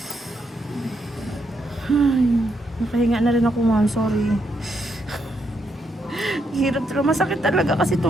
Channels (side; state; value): both; normal; correlation 0.78